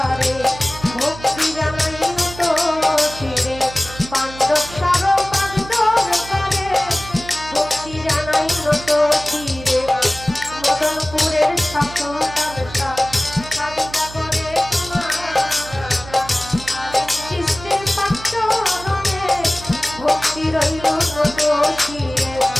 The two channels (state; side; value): noise; right; hum, 15 dB below the sound